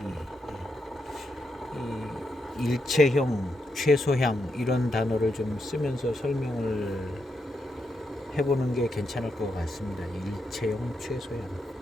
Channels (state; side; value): normal; both; correlation 0.83